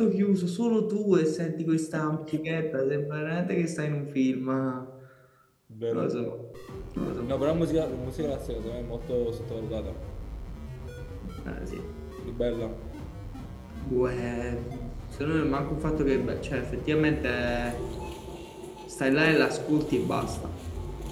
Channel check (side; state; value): both; identical; correlation 1.00